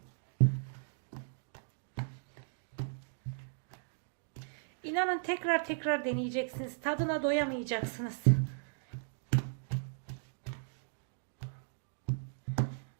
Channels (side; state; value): left; silent; digital silence